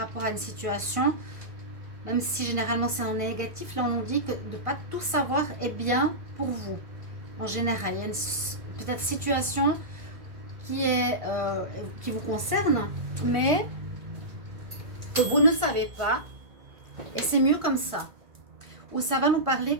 à une situation, même si généralement c'est en négatif. Là, on nous dit que de ne pas tout savoir est bien pour vous. En général, il y a peut-être situation qui vous concerne, mais que vous ne savez pas, et c'est mieux comme ça. Où ça va nous parler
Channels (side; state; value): left; late; 1.5 ms